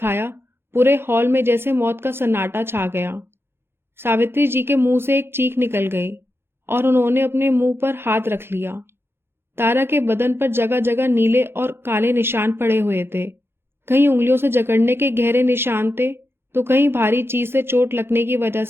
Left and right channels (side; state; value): left; late; 0.11 ms